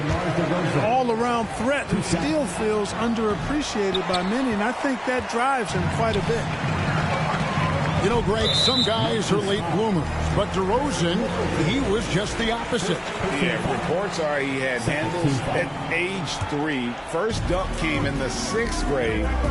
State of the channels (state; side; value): identical; both; correlation 1.00